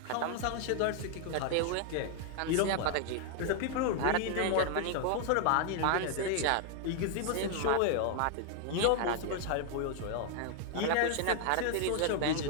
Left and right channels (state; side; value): different; both; correlation 0.00